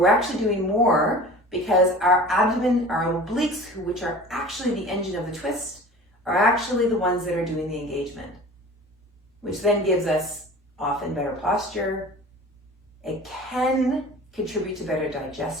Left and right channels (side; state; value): both; normal; correlation 0.40